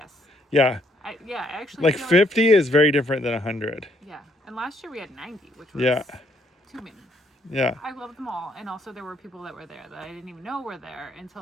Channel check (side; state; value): both; normal; correlation 0.69